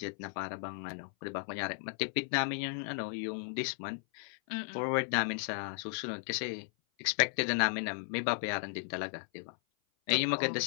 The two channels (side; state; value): right; silent; 54 dB below the other